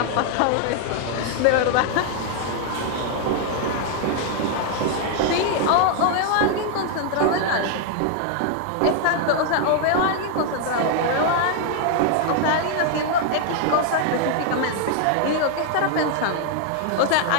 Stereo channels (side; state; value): both; different; correlation 0.00